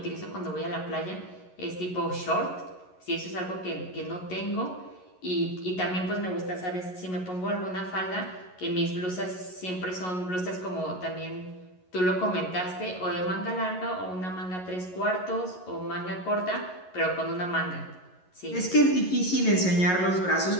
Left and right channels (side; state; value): right; late; 11 ms